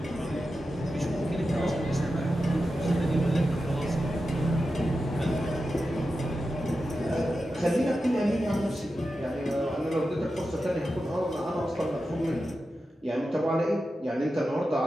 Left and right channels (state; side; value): normal; both; correlation 0.91